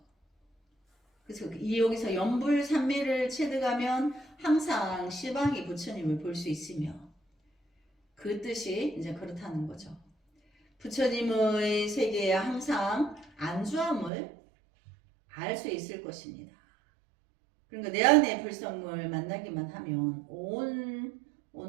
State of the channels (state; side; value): drops out; left; at 14.1 s